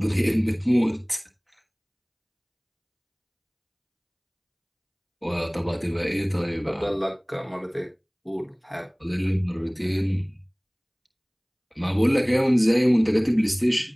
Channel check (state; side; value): identical; both; correlation 1.00